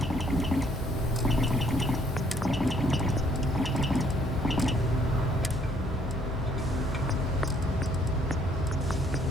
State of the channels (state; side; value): normal; both; correlation 0.64